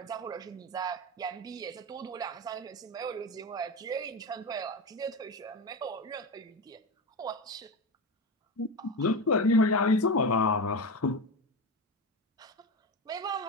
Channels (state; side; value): normal; both; correlation 0.20